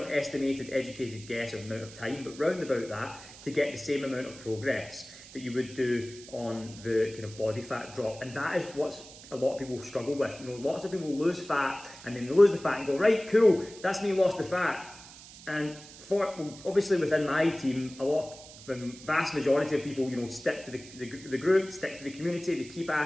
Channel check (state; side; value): noise; right; hiss, 18 dB below the sound